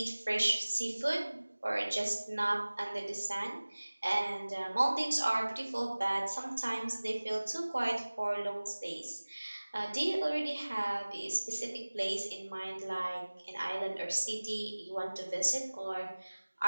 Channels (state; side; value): inverted; both; correlation -1.00